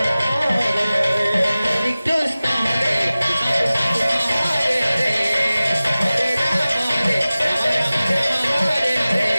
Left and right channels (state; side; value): inverted; both; correlation -0.97